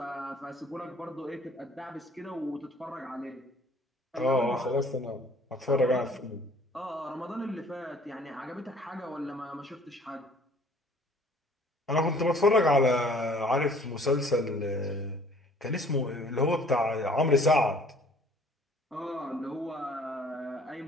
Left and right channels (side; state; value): both; normal; correlation 0.54